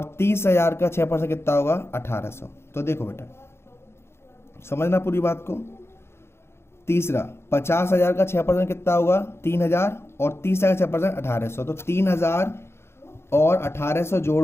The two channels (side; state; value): right; late; 0.12 ms